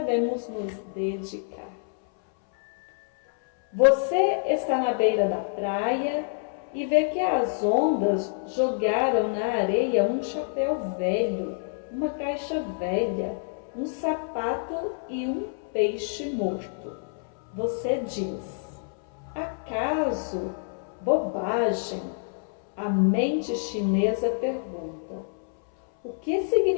nos dedicar. Você está na beira da praia e vê que as ondas jogaram na areia um chapéu velho, uma caixa velha, um sapato e um peixe morto. Você diz: acaso? Bobagem. A mente chinesa pergunta: o que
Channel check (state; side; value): silent; right; 60 dB below the other